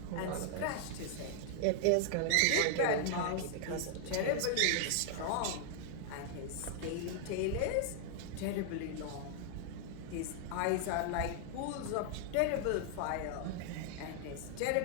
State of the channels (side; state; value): both; different; correlation 0.00